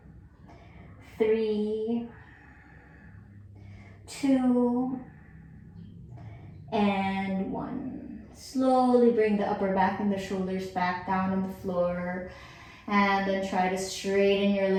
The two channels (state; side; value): identical; both; correlation 1.00